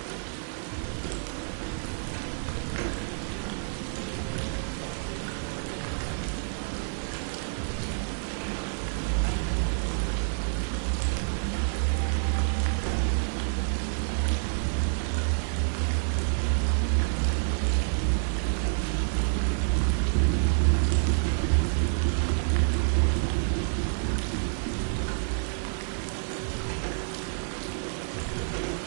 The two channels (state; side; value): silent; left; digital silence